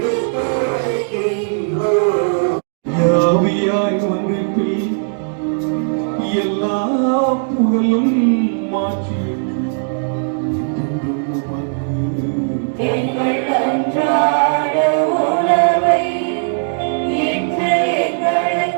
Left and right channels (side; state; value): left; silent; digital silence